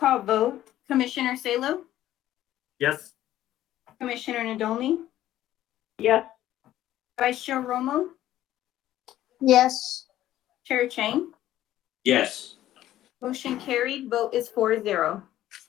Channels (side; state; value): right; quieter; 13.4 dB